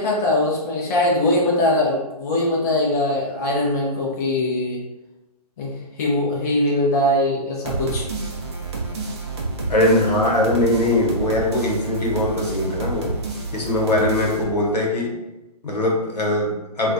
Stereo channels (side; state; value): both; normal; correlation -0.14